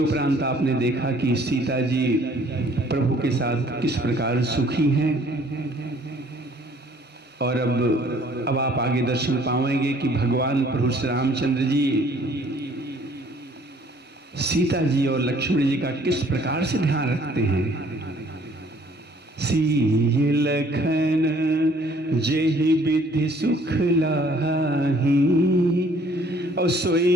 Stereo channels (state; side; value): normal; both; correlation 0.59